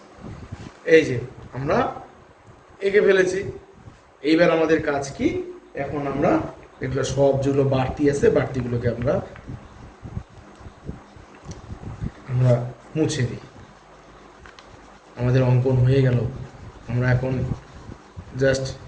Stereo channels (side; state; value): both; identical; correlation 1.00